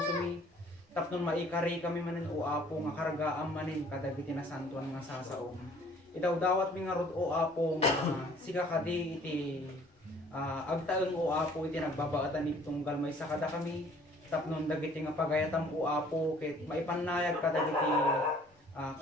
mi tapnon maikari kami manen o apo nga karagaam manen kadagiti nasantuan nga sasaom itaw dawat mi nga rod o apo nga siga kadi iti agtaeng o apo iti nagbabaatan ni tunggal may sakada kami tapnon dagiti nga pagayatam o apo ket maipanayag kadagiti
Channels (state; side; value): normal; both; correlation 0.55